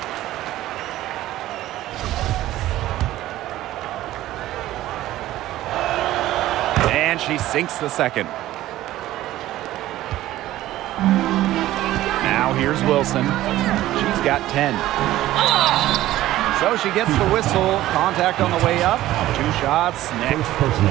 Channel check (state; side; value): quieter; left; 14.9 dB